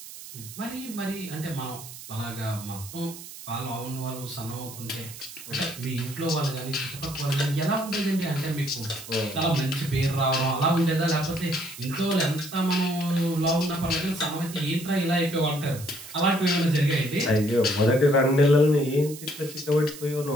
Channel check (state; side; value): noise; right; hiss, 14 dB below the sound